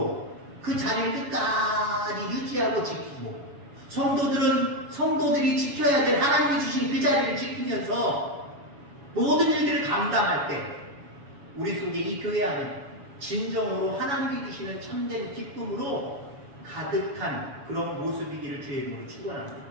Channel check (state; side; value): late; left; 7.2 ms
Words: 그 자리를 끝까지 유지하고 지키고, 성도들이 지켜야 될 하나님이 주신 그 자리를 지키면서 모든 일들을 감당할 때 우리 속에 이 교회 안에 진정으로 하나님이 주시는 참된 기쁨으로 가득한 그런 모습이기를 주의 이름으로 축원합니다.